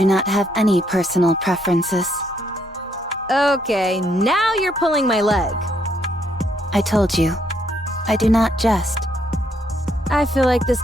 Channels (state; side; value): normal; both; correlation 0.72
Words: not have any personal preferences. Okay, now you're pulling my leg. I told you, I do not jest. I feel like this